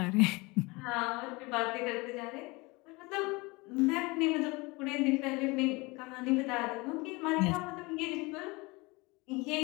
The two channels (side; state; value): right; quieter; 25.0 dB